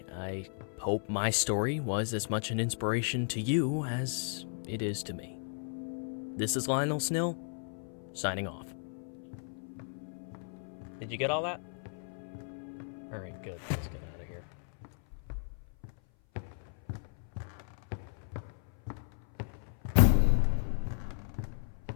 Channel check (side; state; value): right; silent; 55 dB below the other